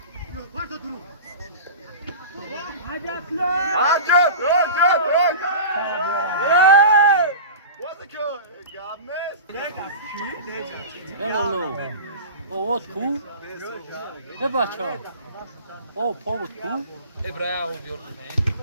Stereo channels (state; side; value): inverted; both; correlation -0.33